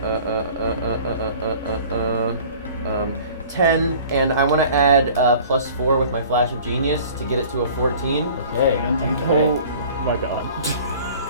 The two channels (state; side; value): inverted; both; correlation -0.47